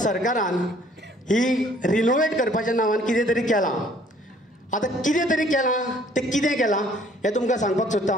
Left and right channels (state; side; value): normal; both; correlation 0.59